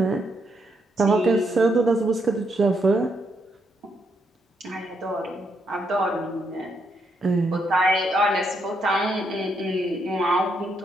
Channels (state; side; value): normal; both; correlation 0.77